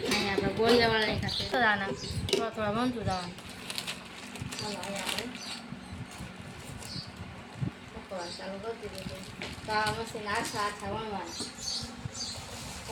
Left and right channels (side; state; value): both; identical; correlation 1.00